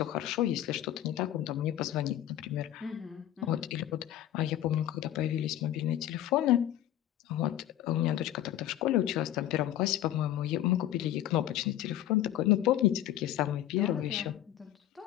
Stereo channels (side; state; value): right; quieter; 12.6 dB